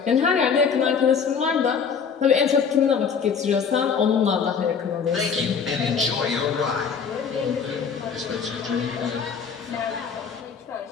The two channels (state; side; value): quieter; right; 6.3 dB